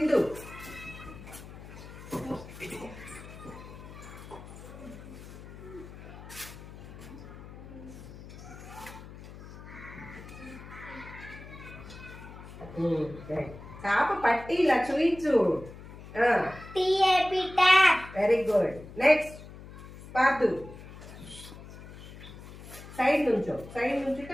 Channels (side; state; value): left; noise; hum, 15 dB below the sound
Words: చేప పట్టి ఇలా చూయించు. Very good. నెక్స్ట్ పాదు. సైడ్ నుంచో, సైడ్ నుంచుంటే